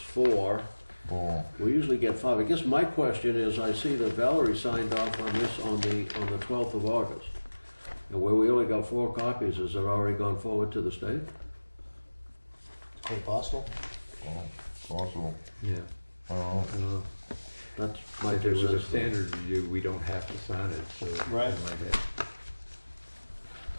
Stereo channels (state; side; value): inverted; both; correlation -1.00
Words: Oh, We usually get five. I guess my question is, I see that Valerie signed off on this on the 12th of August. And where we only got 4 copies, has it already gone forward to the state? Quite possible. oh, possible. Yeah. I don't know. That's my If it was a 2 cents. standard review, we don't have to sign it, so. Right. I might have-